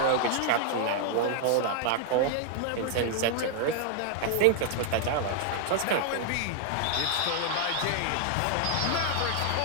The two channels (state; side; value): different; both; correlation 0.00